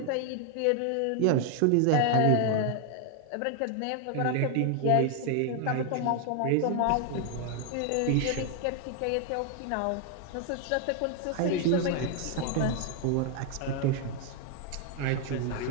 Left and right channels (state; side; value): different; both; correlation 0.00